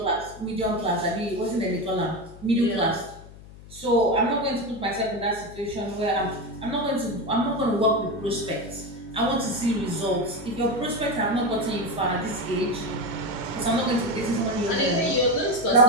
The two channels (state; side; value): noise; left; hum, 18 dB below the sound